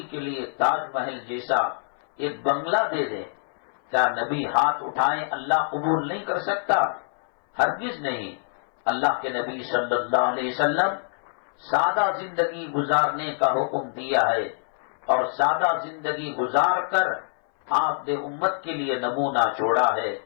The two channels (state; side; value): silent; right; 59 dB below the other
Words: کے لیے تاج محل جیسا ایک بنگلہ دے دے. کیا نبی ہاتھ اٹھائیں اللہ قبول نہیں کر سکتا؟ ہرگز نہیں. اللہ کے نبی صلی اللہ علیہ وسلم سادہ زندگی گزارنے کا حکم دیا ہے، اور سادہ زندگی گزار کر آپ نے امت کے لیے نمونہ چھوڑا ہے.